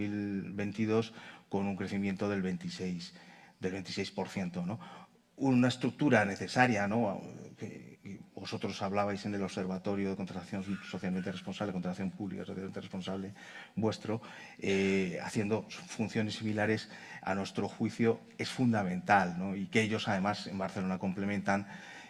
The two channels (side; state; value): both; identical; correlation 1.00